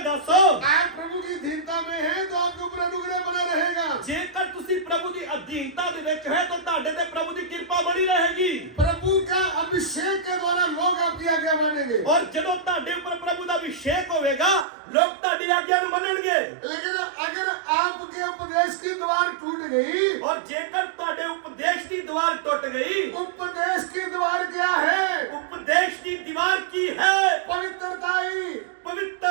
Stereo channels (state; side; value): drops out; left; at 14.7 s